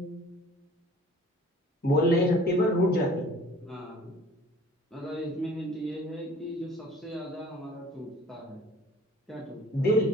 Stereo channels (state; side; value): normal; both; correlation 0.49